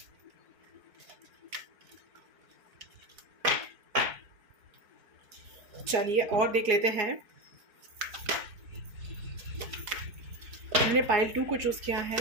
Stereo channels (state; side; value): late; left; 4.7 ms